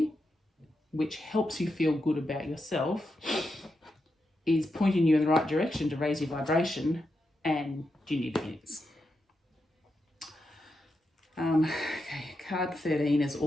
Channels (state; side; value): normal; both; correlation 0.86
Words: which helps you feel good about yourself is pointing you in the right direction to raise your vibration and do new beginnings. Okay, card 13 is